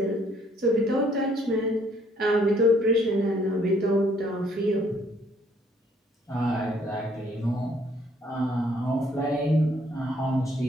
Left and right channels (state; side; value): normal; both; correlation 0.64